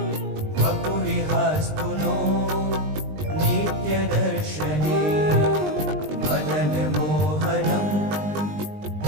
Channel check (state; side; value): late; left; 20 ms